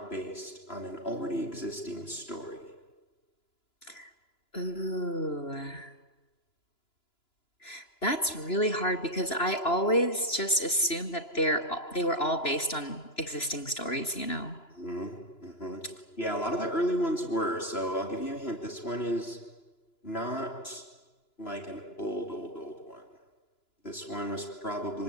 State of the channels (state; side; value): late; right; 2.9 ms